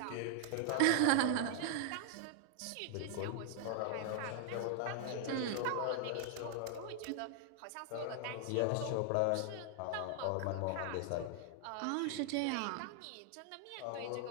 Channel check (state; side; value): different; both; correlation 0.00